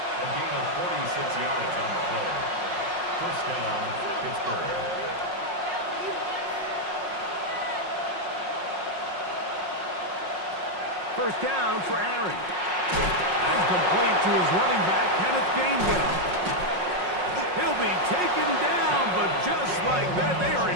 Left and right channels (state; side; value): late; left; 5.5 ms